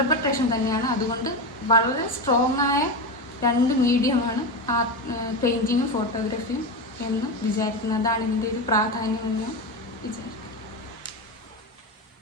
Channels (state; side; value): normal; both; correlation 0.17